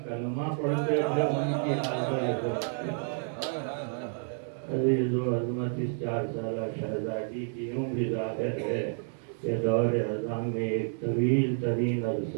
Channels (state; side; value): silent; left; 58 dB below the other